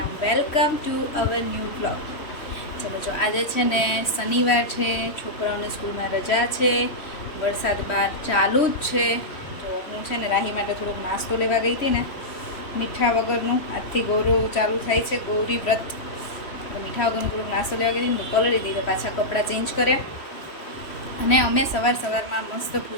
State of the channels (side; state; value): right; late; 3.0 ms